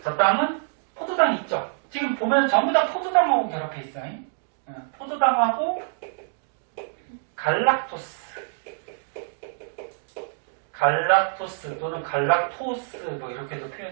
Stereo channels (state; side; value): silent; left; digital silence